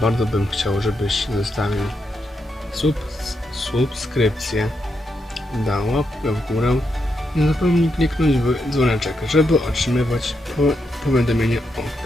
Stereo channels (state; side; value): normal; both; correlation 0.82